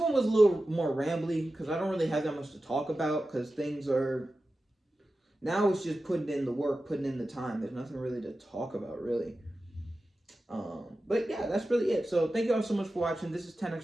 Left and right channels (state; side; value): normal; both; correlation 0.93